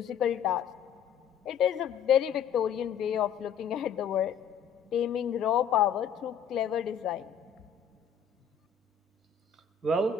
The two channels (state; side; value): quieter; right; 7.7 dB